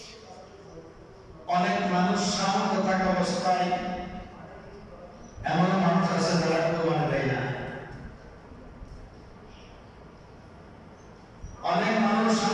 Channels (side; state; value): both; identical; correlation 1.00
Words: অনেক মানুষ সামর্থ্য থাকা অবস্থায় এমন মানুষ আছে যারা কোরবানি দেয় না। অনেক মানুষ